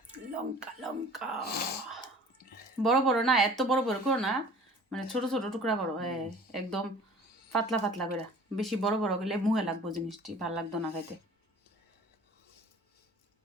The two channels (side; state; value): both; normal; correlation 0.46